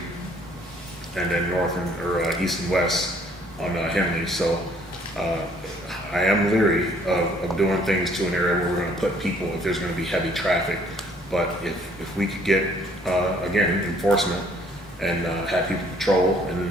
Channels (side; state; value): both; normal; correlation 0.61